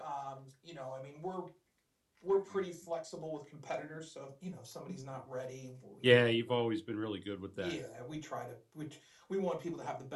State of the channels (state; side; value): identical; both; correlation 1.00